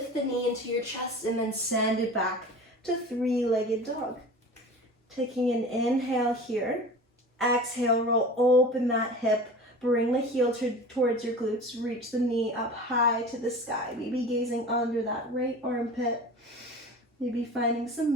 the knee into your chest and then send it back to three-legged dog. Taking an inhale here. Exhale, roll open that hip. Bring the heel towards your glutes. Reach the knee up high to the sky. Maybe gazing under that right armpit. Maybe finding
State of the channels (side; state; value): both; normal; correlation 0.37